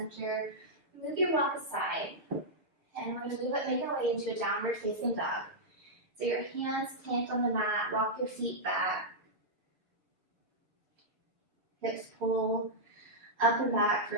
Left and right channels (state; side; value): late; left; 6.5 ms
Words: Move your block aside. And we're going to make our way into a downward facing dog. So your hands plant on the mat, walk your feet back. Hips pull up and back for